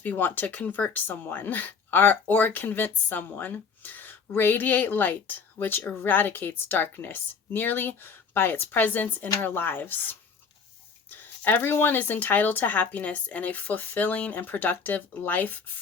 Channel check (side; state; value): right; quieter; 5.6 dB